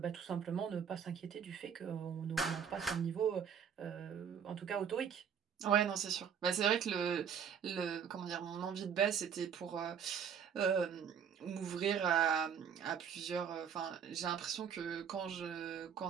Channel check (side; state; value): left; quieter; 7.6 dB